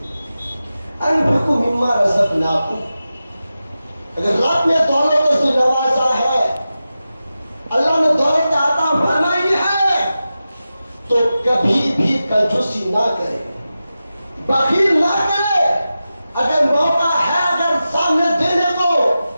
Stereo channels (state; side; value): inverted; both; correlation -0.93